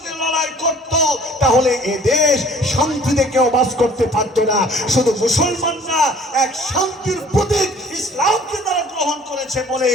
লড়াই করত, তাহলে এ দেশ শান্তিতে কেউ বাস করতে পারত না। শুধু মুসলমানরা এক শান্তির প্রতীক ইসলামকে তারা গ্রহণ করেছে বলে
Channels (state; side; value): normal; both; correlation 0.52